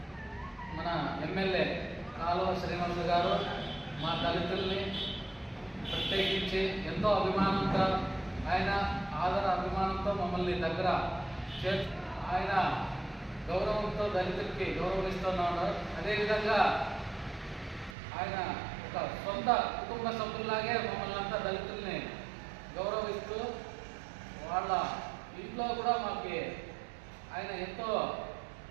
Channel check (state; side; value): drops out; left; at 17.9 s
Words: మన ఎమ్మెల్యే కాలువ శ్రీనివాస్ గారు మా దళితుల్ని ప్రత్యేకించి ఎంతో అభిమానంతో ఆయన అభిమానంతో మమ్మల్ని దగ్గర ఆయన గౌరవంతో దళితులకి గౌరవిస్తున్నాడు. అదేవిధంగా ఆయన ఒక సొంత కుటుంబ సభ్యుల్లాగే మమ్మల్ని అంతా దళితుల్ని గౌరవిస్తూ వాళ్ళ ఇంట్లో కూడా మాకు ఆయన ఎంతో